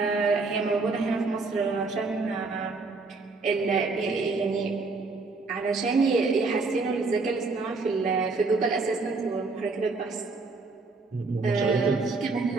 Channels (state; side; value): quieter; left; 3.9 dB